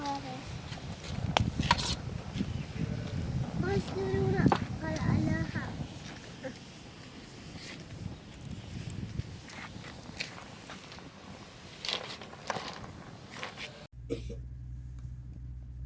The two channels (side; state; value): both; identical; correlation 1.00